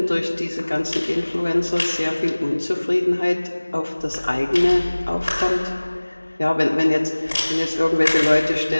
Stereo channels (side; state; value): both; inverted; correlation -1.00